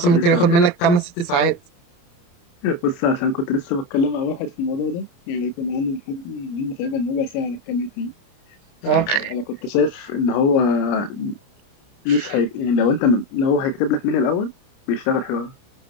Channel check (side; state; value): right; late; 29 ms